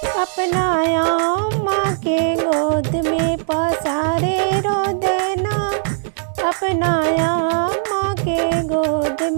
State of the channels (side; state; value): left; silent; digital silence